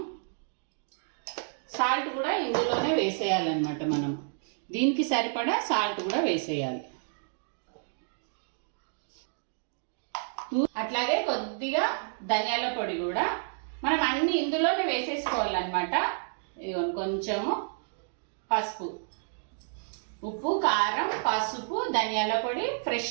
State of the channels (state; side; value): silent; left; digital silence